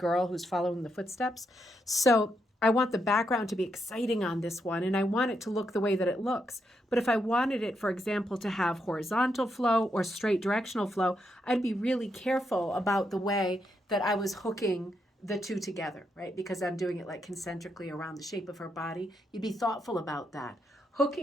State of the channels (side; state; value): both; normal; correlation 0.81